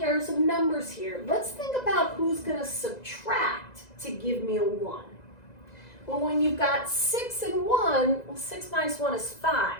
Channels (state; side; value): late; right; 2.0 ms